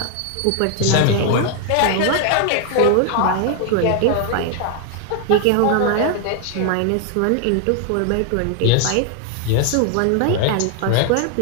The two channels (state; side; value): different; both; correlation 0.00